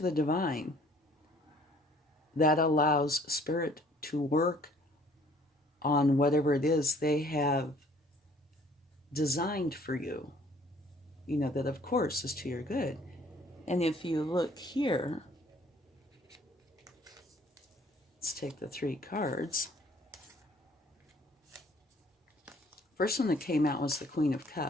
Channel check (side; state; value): both; normal; correlation 0.58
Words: the divine, that allows spirit to work on whatever it is they have designed for you, that of course is to your good. And if you look here, let's take the 3 cards. First one that came out was the Queen of